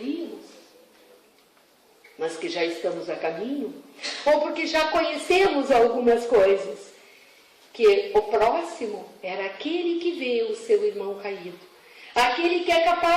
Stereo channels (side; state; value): both; identical; correlation 1.00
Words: mas que já estamos a caminho, ou porque já conhecemos algumas coisas, que o próximo era aquele que vê o seu irmão caído, aquele que é